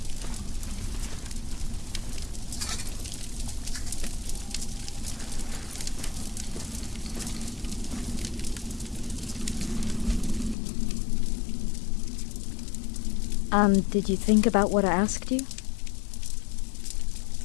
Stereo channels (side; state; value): right; drops out; at 10.6 s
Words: And did you think about what I asked you?